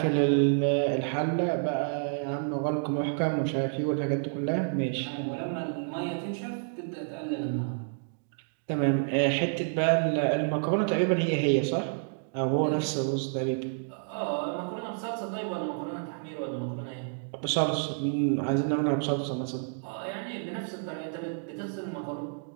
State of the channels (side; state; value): left; silent; digital silence